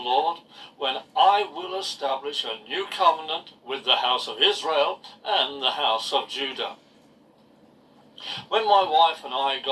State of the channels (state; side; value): identical; both; correlation 1.00